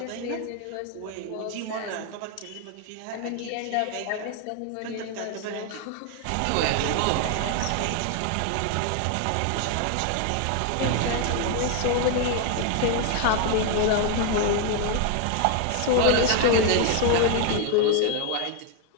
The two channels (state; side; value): different; both; correlation 0.00